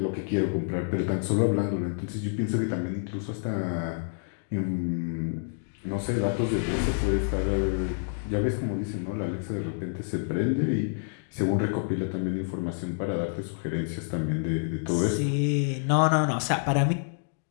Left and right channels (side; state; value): right; silent; digital silence